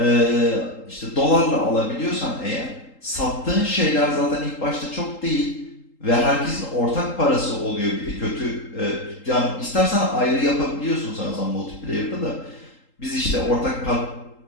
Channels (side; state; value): right; late; 3.8 ms